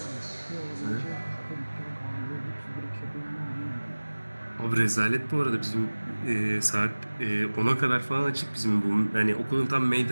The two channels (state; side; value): inverted; both; correlation -1.00